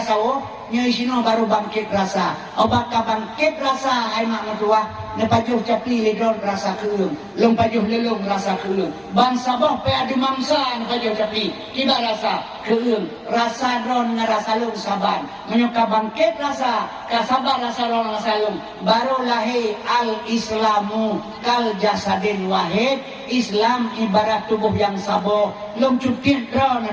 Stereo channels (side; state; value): both; identical; correlation 1.00